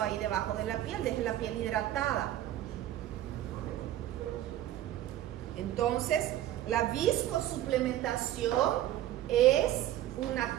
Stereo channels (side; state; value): left; quieter; 13.1 dB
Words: ahí debajo de la piel, deje la piel hidratada. Entonces, la viscosuplementación es